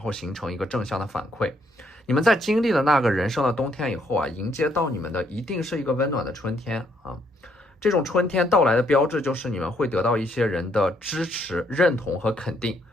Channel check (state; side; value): normal; both; correlation 0.71